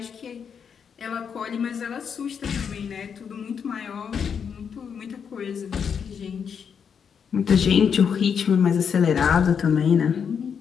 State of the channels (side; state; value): right; quieter; 7.0 dB